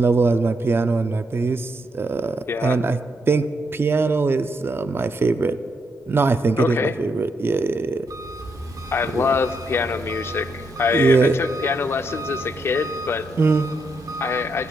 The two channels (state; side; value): normal; both; correlation 0.79